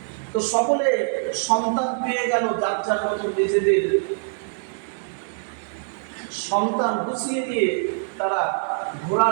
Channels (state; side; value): silent; left; digital silence